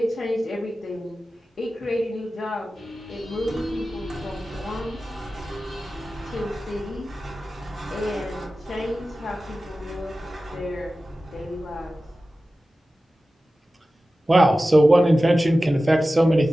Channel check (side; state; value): both; normal; correlation 0.95